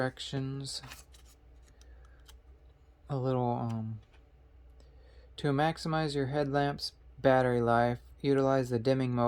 A little to maximize your headlamp's battery life, utilize the dimming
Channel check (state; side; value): identical; both; correlation 1.00